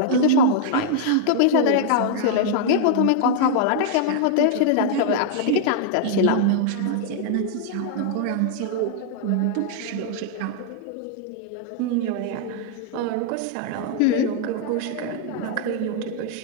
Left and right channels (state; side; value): different; both; correlation -0.01